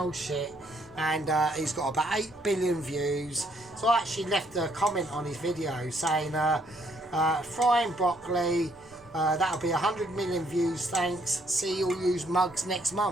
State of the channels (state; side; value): noise; right; rumble, 28 dB below the sound